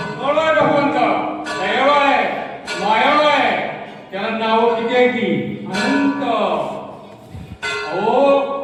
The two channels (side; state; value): both; identical; correlation 1.00